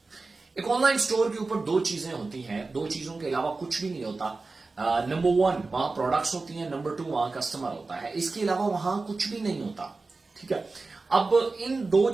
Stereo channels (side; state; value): left; quieter; 3.7 dB